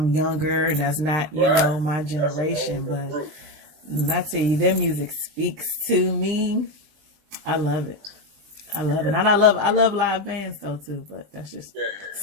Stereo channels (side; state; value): left; late; 20 ms